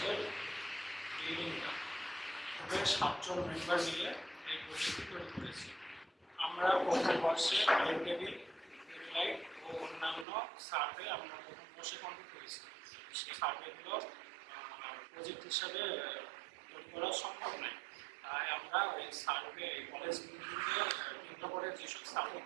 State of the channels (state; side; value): drops out; left; at 10.2 s